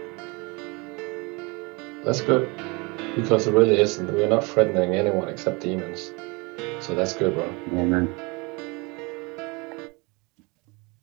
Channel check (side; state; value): left; quieter; 27.8 dB